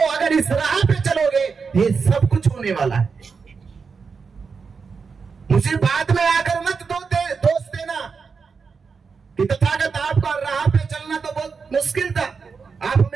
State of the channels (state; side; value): quieter; left; 5.3 dB